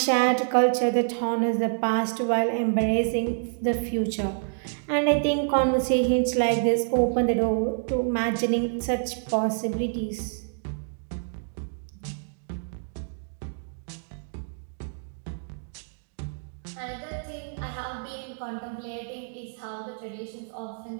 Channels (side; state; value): left; silent; digital silence